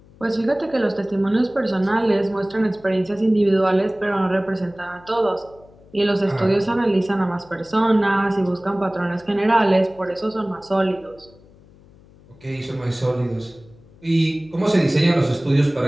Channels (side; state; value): left; noise; hum, 26 dB below the sound